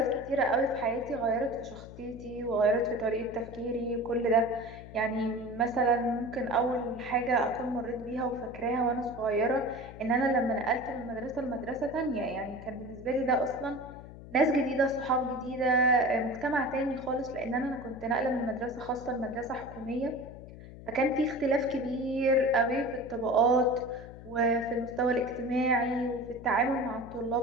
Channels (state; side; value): noise; left; hum, 15 dB below the sound